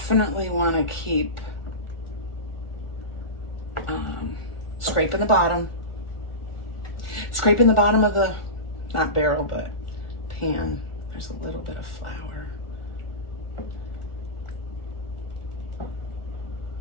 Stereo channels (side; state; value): right; late; 1.4 ms